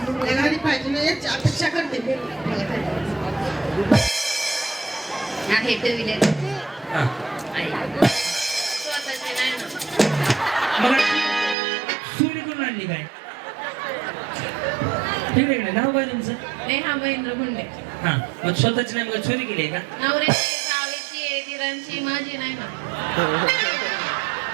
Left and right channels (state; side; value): drops out; left; at 11.6 s